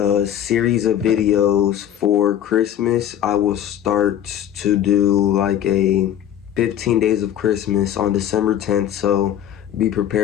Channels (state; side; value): quieter; right; 10.7 dB